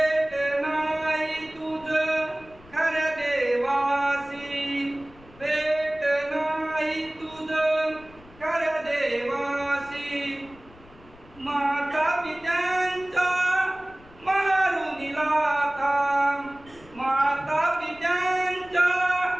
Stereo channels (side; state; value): left; noise; rumble, 24 dB below the sound